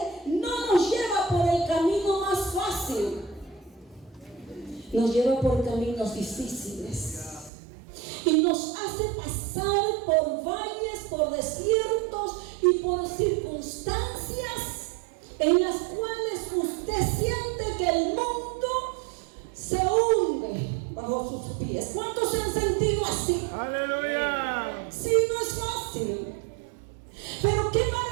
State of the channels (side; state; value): left; drops out; at 7.5 s